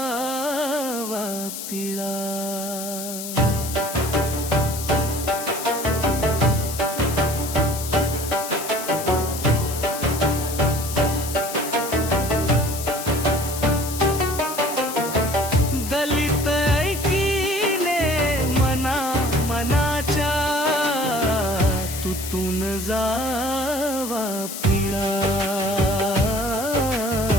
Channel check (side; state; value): left; noise; hiss, 8 dB below the sound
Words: पिळा। दलित ऐकीने मना मनाच्या तुटून जावा पिळा,